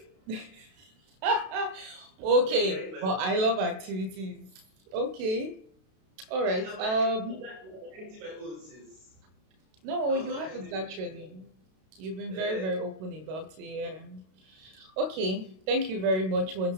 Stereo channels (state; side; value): late; left; 32 ms